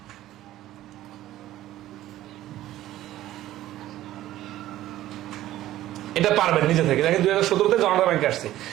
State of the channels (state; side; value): quieter; left; 14.3 dB